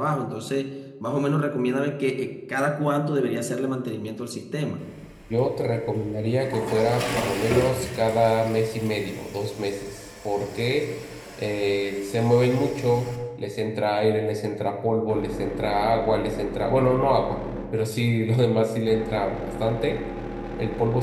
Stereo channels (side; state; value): both; identical; correlation 1.00